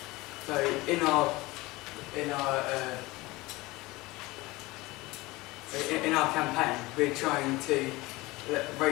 So in our campaign, we're trying to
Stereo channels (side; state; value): right; quieter; 21.2 dB